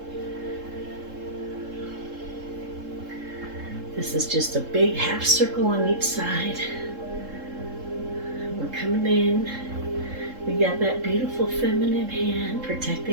This is just a big half circle on each side. We're coming in. We got that beautiful feminine hand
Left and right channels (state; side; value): late; left; 3.7 ms